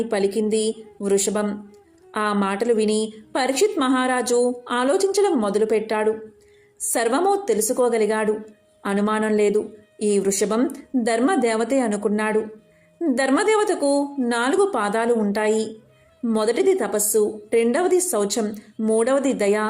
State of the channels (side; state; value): both; identical; correlation 1.00